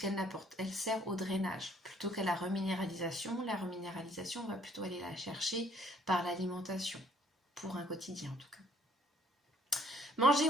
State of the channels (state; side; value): normal; both; correlation 0.62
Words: n'apporte. Elle sert au drainage plutôt qu'à la reminéralisation. La reminéralisation, on va plutôt aller la chercher par l'alimentation, pour un quotidien en tout cas. Manger